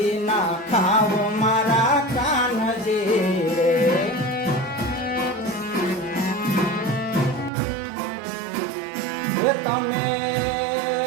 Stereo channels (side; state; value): left; drops out; at 7.5 s